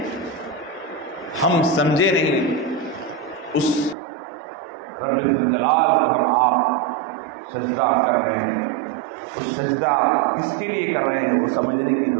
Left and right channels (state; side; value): drops out; left; at 4.0 s